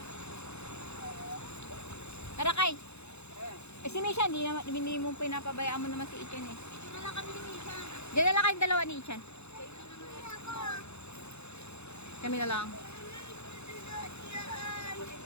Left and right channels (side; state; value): right; late; 0.81 ms